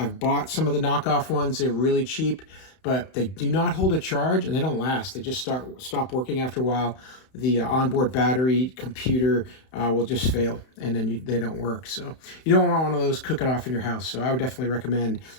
bought some of the knockoff ones. They're really cheap, but they do not hold a charge and they don't last. They just stop working after a while. The onboard battery computer will just fail, and then they don't work. So you don't want one of those cooking off in your house. So I would definitely recommend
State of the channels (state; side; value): late; right; 31 ms